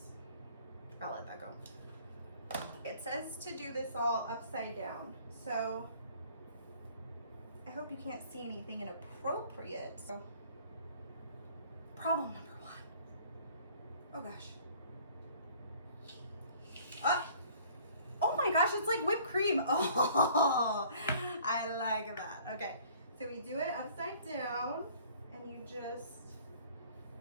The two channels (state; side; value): inverted; both; correlation -0.54